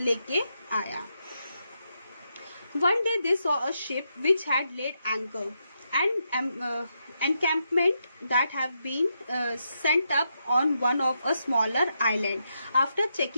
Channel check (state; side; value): inverted; both; correlation -0.82